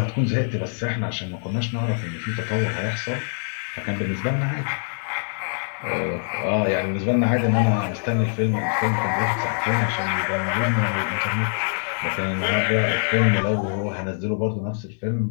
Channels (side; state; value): right; silent; digital silence